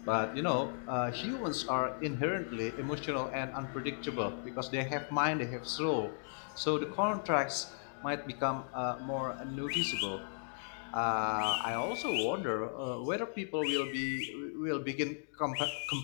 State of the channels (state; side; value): silent; right; digital silence